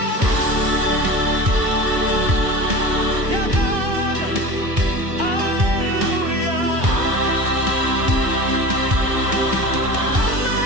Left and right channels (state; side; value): late; left; 1.4 ms